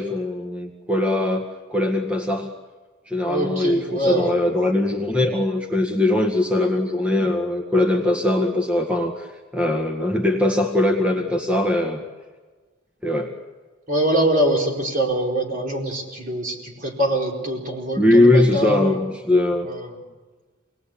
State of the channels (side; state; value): both; normal; correlation 0.62